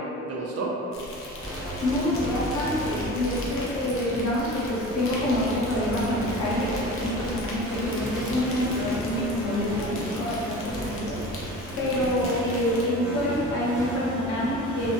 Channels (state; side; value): normal; both; correlation 0.36